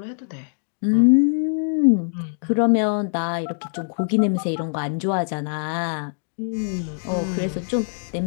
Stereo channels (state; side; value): silent; right; digital silence